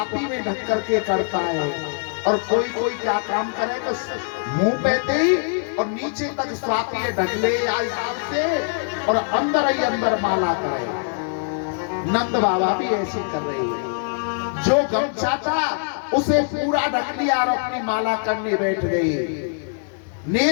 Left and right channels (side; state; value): right; silent; 64 dB below the other